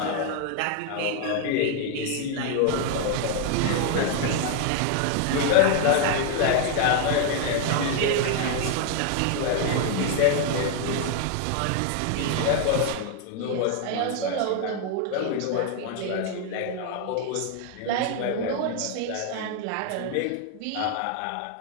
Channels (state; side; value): different; both; correlation 0.00